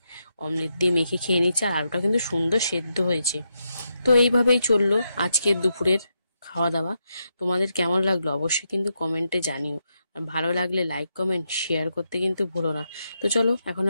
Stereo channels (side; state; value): both; inverted; correlation -0.84